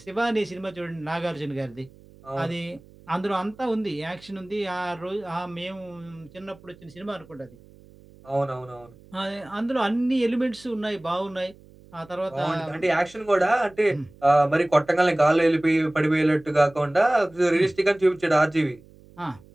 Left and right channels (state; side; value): noise; right; hum, 24 dB below the sound